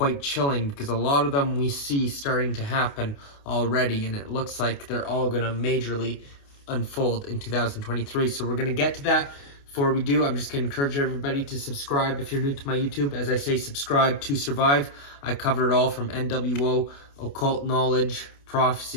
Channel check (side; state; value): right; late; 28 ms